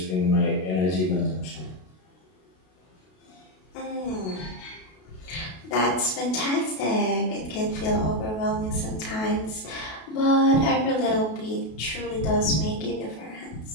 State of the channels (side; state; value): right; late; 32 ms